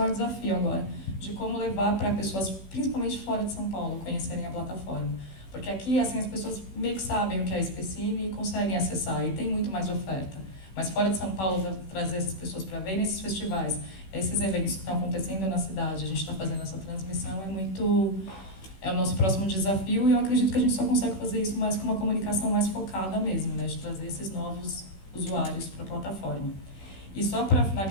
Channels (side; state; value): right; late; 16 ms